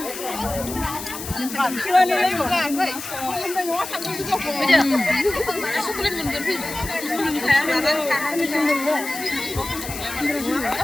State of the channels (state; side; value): noise; left; hiss, 9 dB below the sound